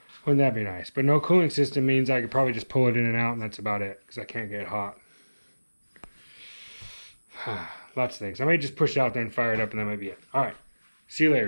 Wouldn't that be nice? But no cooling system means I could probably just pull it in and out, and that's about it, because I can't get hot. Lots of things. I may just push it out there and fire it up, and that might be it. All right. See you later.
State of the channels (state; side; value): inverted; both; correlation -1.00